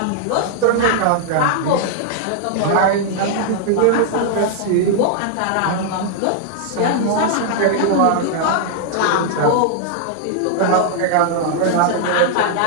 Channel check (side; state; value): both; different; correlation -0.01